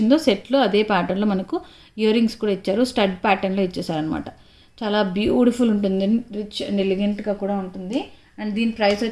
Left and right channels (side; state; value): both; identical; correlation 1.00